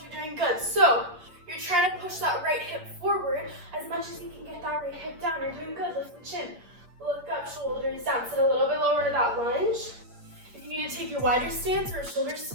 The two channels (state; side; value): late; left; 8.6 ms